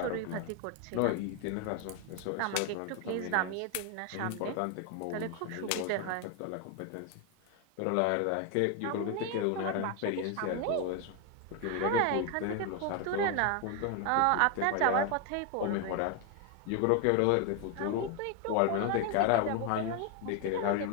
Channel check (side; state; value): both; different; correlation 0.01